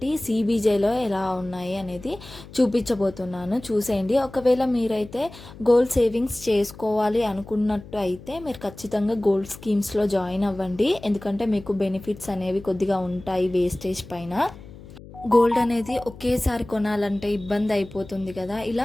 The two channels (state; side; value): noise; left; hum, 17 dB below the sound